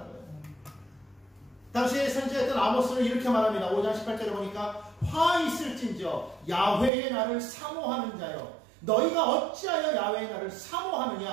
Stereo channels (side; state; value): left; drops out; at 6.9 s